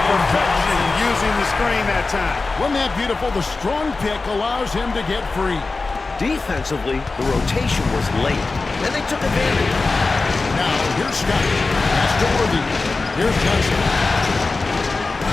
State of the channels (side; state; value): right; quieter; 3.8 dB